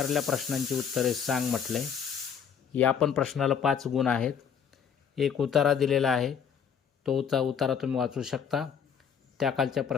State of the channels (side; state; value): right; quieter; 7.4 dB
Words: प्रश्नांची उत्तरे सांग म्हटलंय. या पण प्रश्नाला 5 गुण आहेत. एक उतारा दिलेला आहे, तो उतारा तुम्ही वाचू शकता. त्याखालच्या